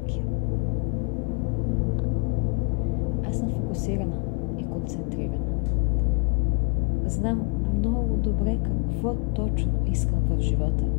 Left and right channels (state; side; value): quieter; right; 34.9 dB